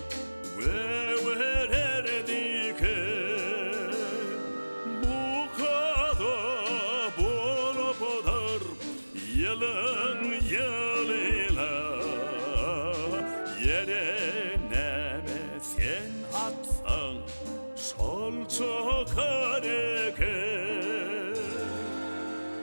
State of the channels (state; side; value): inverted; both; correlation -1.00